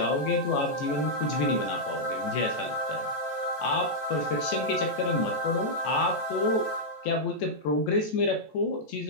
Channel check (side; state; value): right; late; 14 ms